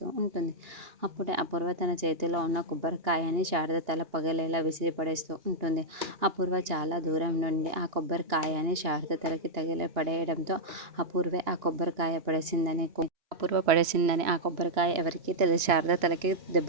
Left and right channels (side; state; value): left; late; 2.8 ms